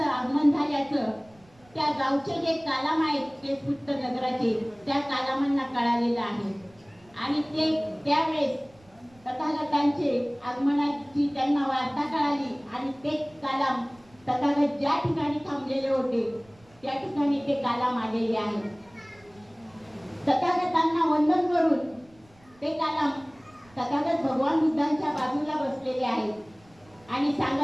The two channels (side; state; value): right; noise; rumble, 29 dB below the sound